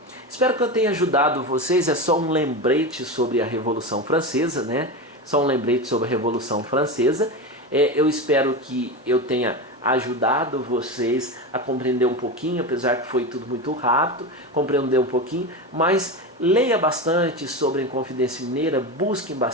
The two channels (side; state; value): both; normal; correlation 0.21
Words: Espero que eu tenha ajudado vocês. É só um lembrete sobre a Revolução Francesa, né? Só um lembrete sobre a Revolução Francesa. Eu espero que eu tenha ajudado vocês a compreender um pouquinho, apesar que foi tudo muito rápido, compreender um pouquinho, mas leia bastante sobre a Inconfidência Mineira, busquem